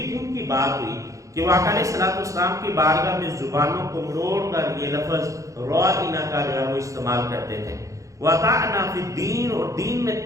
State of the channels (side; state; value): left; late; 0.15 ms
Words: ان کی بات ہوئی کہ وہ آقا علیہ الصلوۃ والسلام کی بارگاہ میں زبانوں کو مروڑ کر یہ لفظ رائنا کا جو ہے وہ استعمال کرتے تھے، وَطَعْنَا فِي الدِّينِ، اور دین میں